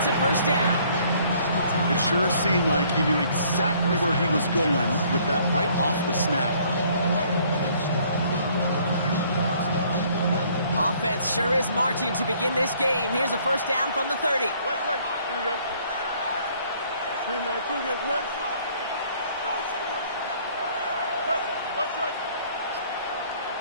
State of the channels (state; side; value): inverted; both; correlation -0.61